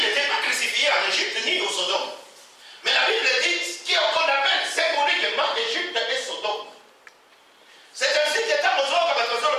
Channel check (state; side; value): identical; both; correlation 1.00